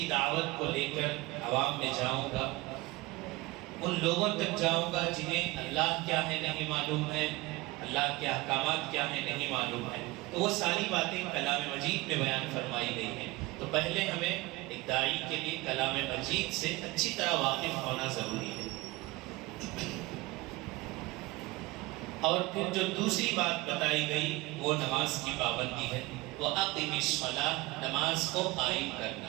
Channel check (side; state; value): left; quieter; 21.4 dB